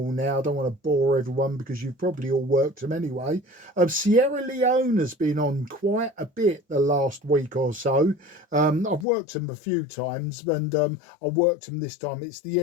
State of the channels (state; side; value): drops out; right; at 9.1 s